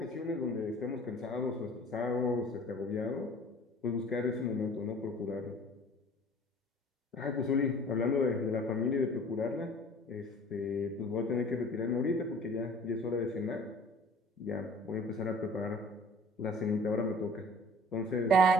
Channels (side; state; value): both; normal; correlation 0.48